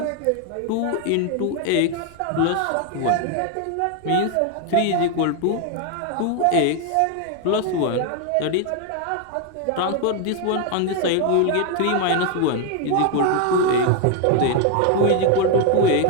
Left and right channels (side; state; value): both; different; correlation 0.01